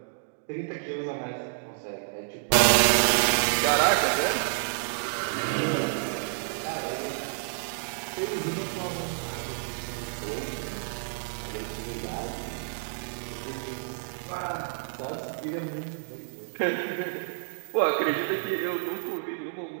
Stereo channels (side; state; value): left; silent; digital silence